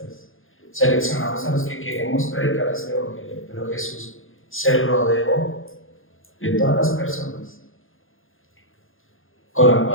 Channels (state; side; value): late; right; 0.59 ms